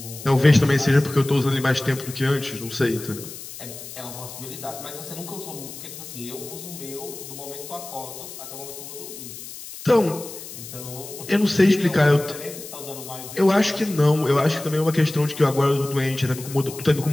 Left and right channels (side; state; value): left; noise; hiss, 13 dB below the sound